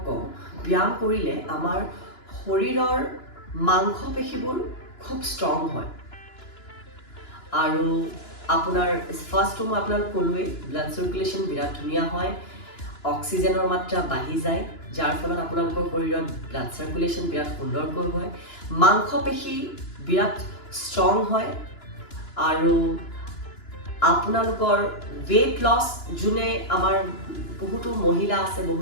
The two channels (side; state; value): right; late; 2.9 ms